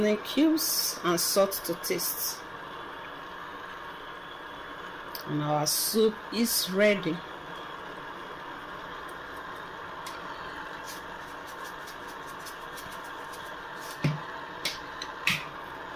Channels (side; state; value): both; identical; correlation 1.00